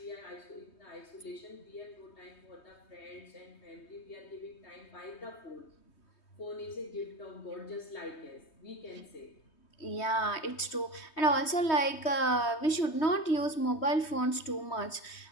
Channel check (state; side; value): late; right; 3.2 ms